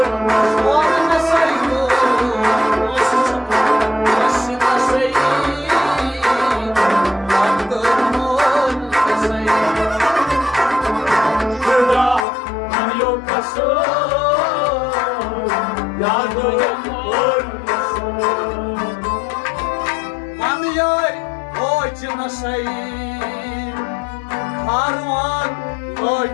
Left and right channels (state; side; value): drops out; right; at 12.2 s